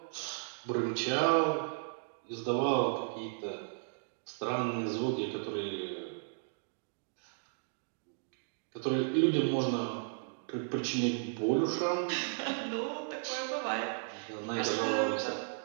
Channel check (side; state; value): left; silent; digital silence